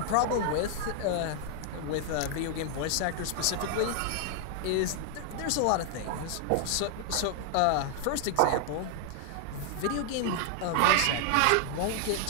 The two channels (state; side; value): different; both; correlation 0.00